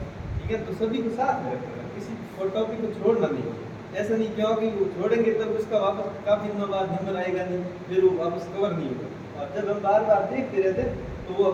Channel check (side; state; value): both; identical; correlation 1.00